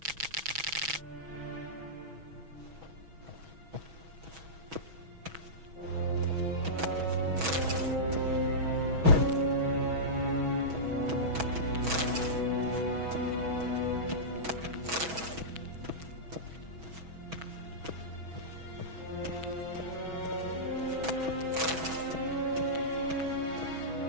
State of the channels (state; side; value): late; left; 6.2 ms